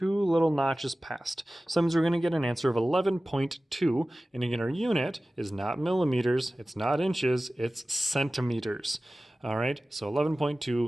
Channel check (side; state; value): both; normal; correlation 0.96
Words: little notches past. So that means we're going to get an answer of 11.2, and again, our unit is not millimeters, it's not inches, it's centimeters. All right, so